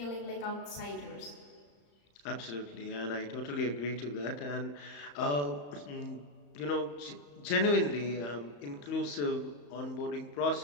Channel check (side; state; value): right; late; 35 ms